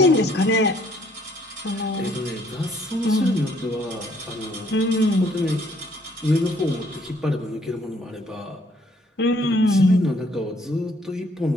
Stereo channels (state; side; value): normal; both; correlation 0.64